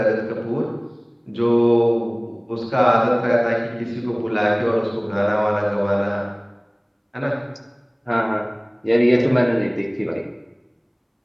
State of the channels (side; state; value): both; identical; correlation 1.00